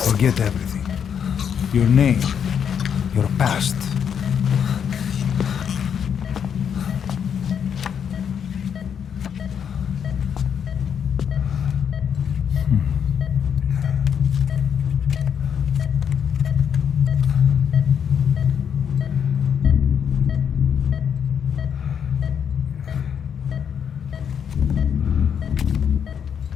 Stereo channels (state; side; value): quieter; right; 7.8 dB